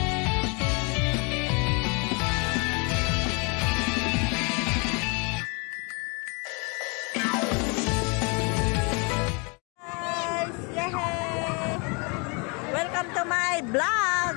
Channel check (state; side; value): quieter; right; 32.7 dB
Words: Guys! Yay! Welcome to my vlog!